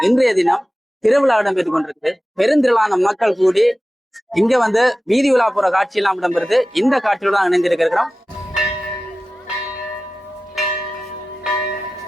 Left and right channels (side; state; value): both; normal; correlation 0.95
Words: இன்றைய தினம் திருவிழா இடம்பெற்றுக் கொண்டிருக்கு. பெருந்திரளான மக்கள் கூடி இங்க வந்து வீதி விழா போற காட்சி எல்லாம் இடம்பெறுது. இந்த காட்சியோட தான் இணைந்திருக்கிறோம்.